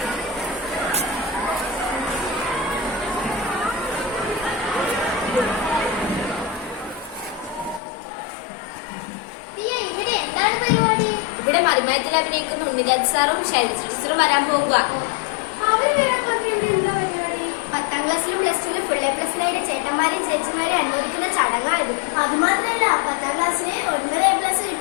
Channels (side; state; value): right; drops out; at 7.8 s